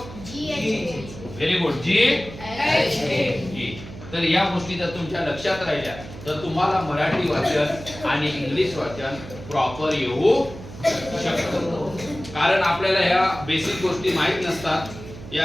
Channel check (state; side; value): noise; right; hum, 14 dB below the sound